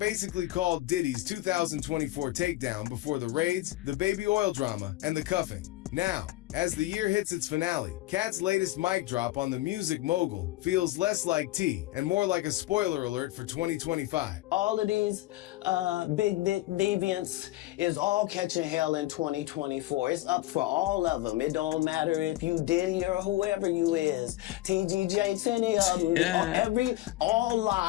called Diddy's 2024 takedown before the raids, the baby oil drama, and the cuffing. Now, as the year hits its finale, Cat's latest mic drop on the music mogul feels less like tea and more like a spoiler alert for 2025. All of these big dick deviants is all catching hell in 2024. It's up for all of them. It don't matter if you Diddy or whoever you is. TGJ, any of them. All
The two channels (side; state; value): right; quieter; 17.0 dB